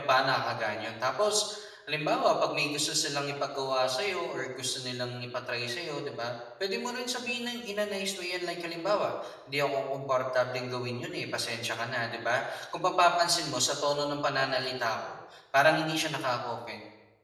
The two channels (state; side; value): identical; both; correlation 1.00